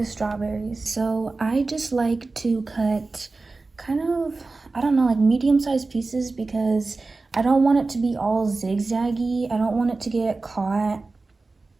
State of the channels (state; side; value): quieter; left; 3.6 dB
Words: strawberries. So I just like to cut kind of, I don't know, like medium-sized pieces, because I don't want it to be all zigzaggy. I don't want it to get caught,